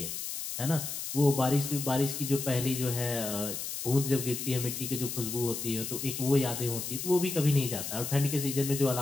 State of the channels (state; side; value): noise; left; hiss, 5 dB below the sound